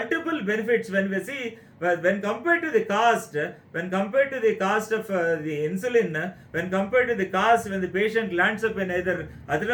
benefits when we see, when compared to the cost, of the insulin, when compared to the cost when the patient lands up in either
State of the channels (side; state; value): both; identical; correlation 1.00